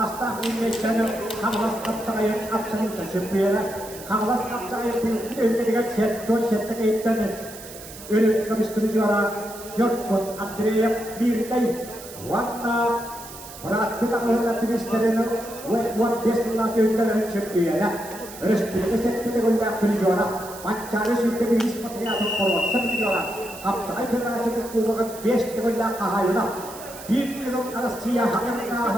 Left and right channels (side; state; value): right; noise; hiss, 15 dB below the sound